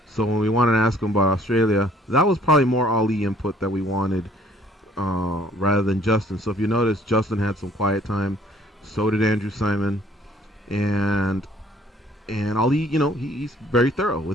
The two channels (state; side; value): normal; both; correlation 0.59